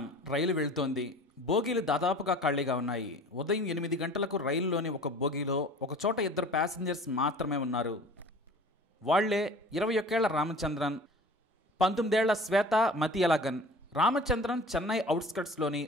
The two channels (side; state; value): both; normal; correlation 0.43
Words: రైలు వెళ్తోంది. బోగీలు దాదాపుగా ఖాళీగా ఉన్నాయి. ఉదయం 8 గంటలకు రైలులోని ఒక బోగీలో ఒకచోట ఇద్దరు ప్యాసింజర్స్ మాత్రమే ఉన్నారు. వాళ్లే 21 ఏళ్ల రామచంద్రన్, 19 ఏళ్ల శ్వేత మతియలగన్. రామచంద్రన్ చెన్నై అవుట్స్కట్స్లోని